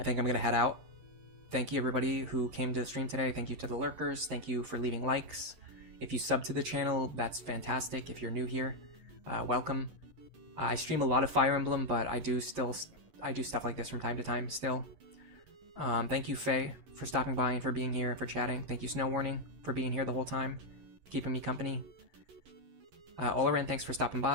think I'm going to head out. Thank you, everybody who came to the stream today. Thank you to the lurkers. Thank you for leaving likes. If you sub to the channel, that's fantastic. If you're new here, welcome. I stream a lot of Fire Emblem, but I do stuff like this from time to time still. Thank you, Faye, for stopping by and for being here and for chatting. Thank you, Snow Warning, for being here the whole time, keeping me company. Olaran, thanks for stopping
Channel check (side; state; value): left; late; 11 ms